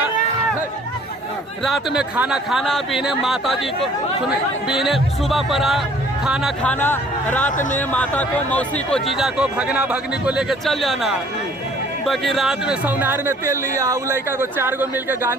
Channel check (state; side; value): normal; both; correlation 0.56